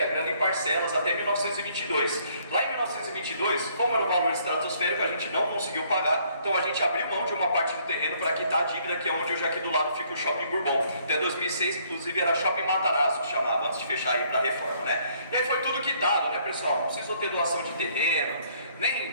a grana em parcelas até 1922. Lá em 1922, como era um valor estratosférico, a gente não conseguiu pagar, então a gente abriu mão de uma parte do terreno para quitar a dívida, que é onde hoje aqui do lado fica o Shopping Bourbon. Até 2006, inclusive, era Shopping Matarazzo, que chamava, antes de fechar aí para a reforma, né? E aí foi tudo quitado, né, pessoal? Não precisou ter doação de terreno, nem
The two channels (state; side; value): inverted; both; correlation -0.65